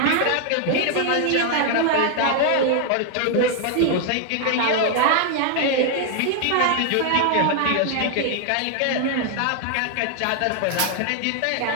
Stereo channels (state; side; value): different; both; correlation 0.00